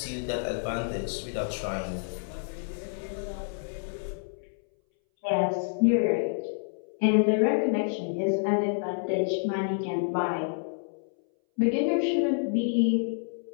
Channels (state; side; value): silent; right; 59 dB below the other